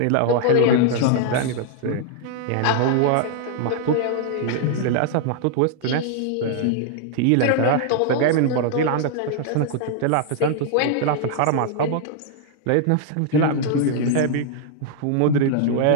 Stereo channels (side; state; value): both; different; correlation -0.01